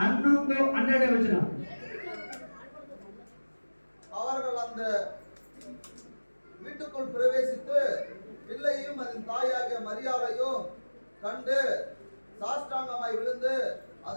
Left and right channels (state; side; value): inverted; both; correlation -1.00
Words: ವಚನ. அவர்கள் அந்த வீட்டுக்குள் பிரவேசித்து பிள்ளையும் அதன் தாயாகிய மரியாளையும் கண்டு சாஷ்டாங்கமாய் விழுந்து